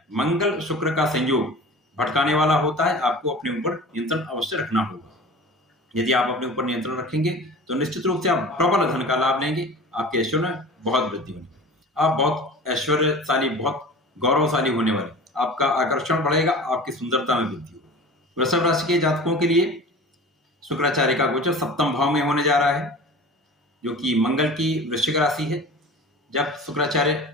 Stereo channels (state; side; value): normal; both; correlation 0.38